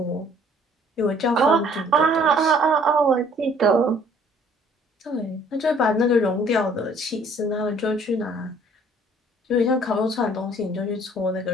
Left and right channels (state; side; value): normal; both; correlation 0.57